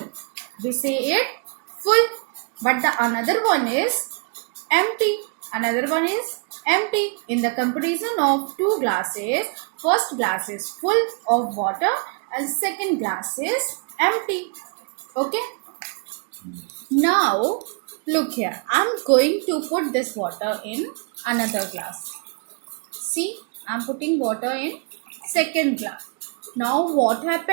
We say it full. But the another one is empty. Another one is empty. In the comparison of two glasses, first glass is full of water and second glass is empty. Okay. Now look here. I am going to put this water in another glass. See, I am putting water in second glass. Now what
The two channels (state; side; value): quieter; left; 35.7 dB